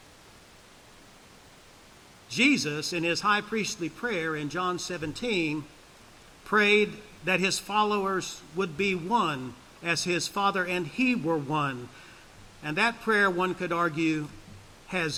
Jesus, in his high priestly prayer in John 17, prayed that his followers would be one as his Father and he were one. And that prayer, one could argue,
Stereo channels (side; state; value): both; identical; correlation 1.00